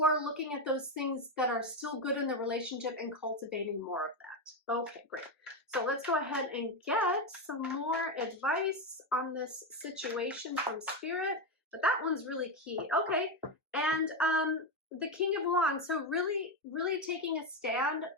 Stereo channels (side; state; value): both; normal; correlation 0.10